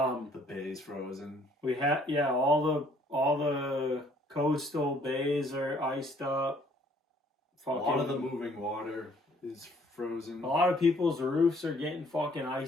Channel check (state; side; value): normal; both; correlation 0.62